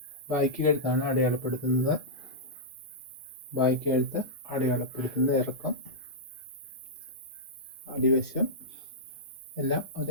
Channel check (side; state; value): both; normal; correlation -0.11